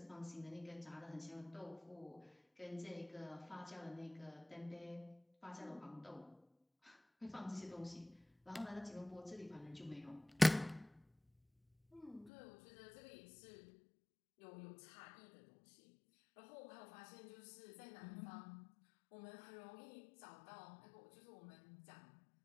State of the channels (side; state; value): right; drops out; at 12.3 s